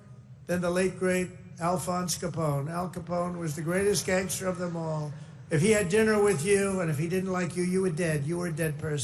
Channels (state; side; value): identical; both; correlation 1.00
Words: than the late, great Alphonse Capone. Al Capone was the greatest gangster of them all. If he had dinner with you and if he didn't like you, you were dead. You were a dead